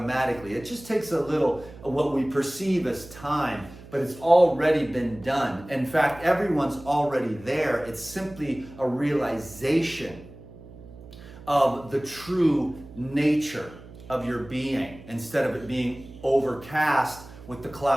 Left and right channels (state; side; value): noise; right; hum, 18 dB below the sound